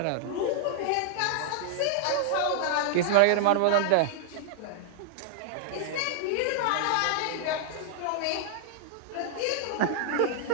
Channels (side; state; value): both; different; correlation -0.01